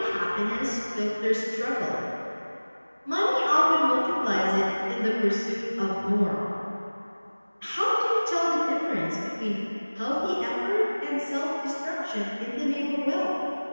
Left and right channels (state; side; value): inverted; both; correlation -1.00